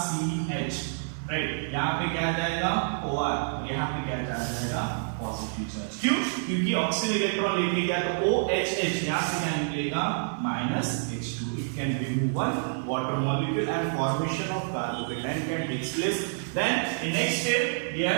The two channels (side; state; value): left; silent; 59 dB below the other